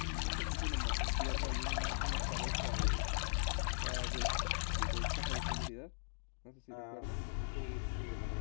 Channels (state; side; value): silent; right; digital silence